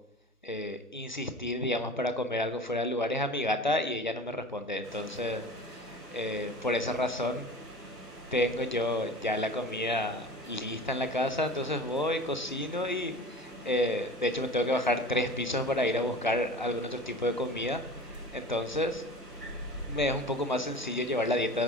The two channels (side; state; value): both; normal; correlation 0.38